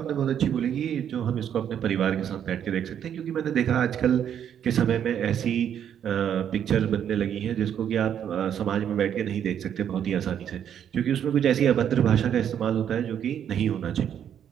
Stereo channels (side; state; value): left; quieter; 9.2 dB